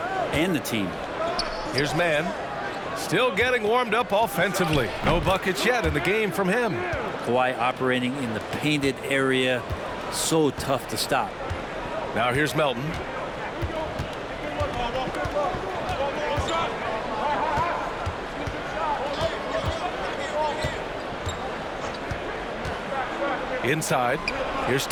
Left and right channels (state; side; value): identical; both; correlation 1.00